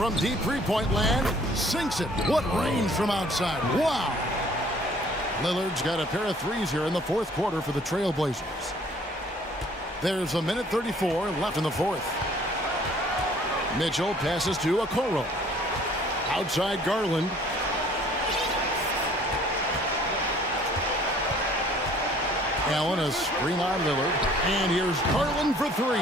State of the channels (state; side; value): normal; both; correlation 0.56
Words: deep three-point land. Sinks it. What range from outside. Wow. Lillard's got a pair of threes here in the fourth quarter for the Trailblazers. There's a minute 34 left in the fourth. Mitchell passes to Okoro. Outside Garland. Allen a screen on Lillard. And here's Garland for 3.